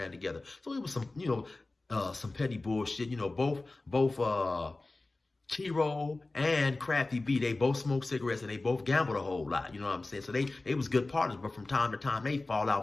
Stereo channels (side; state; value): right; quieter; 3.1 dB